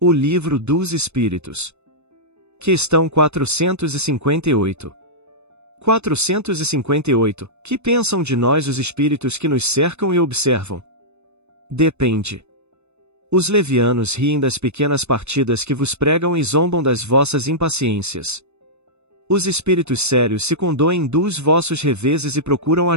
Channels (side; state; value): left; late; 0.81 ms